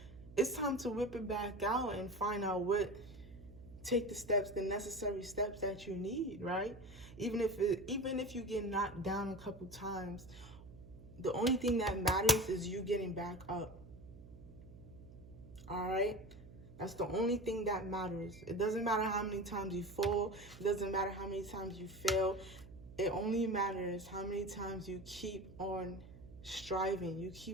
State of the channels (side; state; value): right; noise; hum, 17 dB below the sound